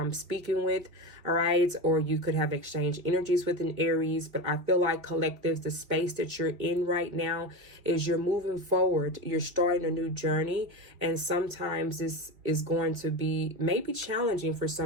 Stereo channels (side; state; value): left; late; 2.8 ms